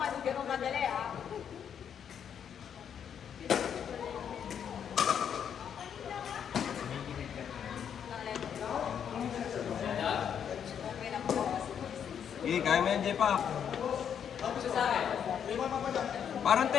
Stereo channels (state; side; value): quieter; right; 8.3 dB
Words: kasi ganun kadali ah. Eh, kaya mo yan, J-Pack. Parang